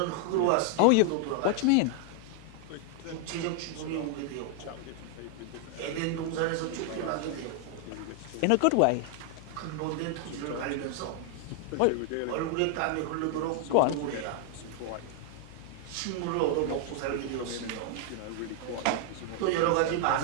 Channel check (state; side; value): different; both; correlation 0.00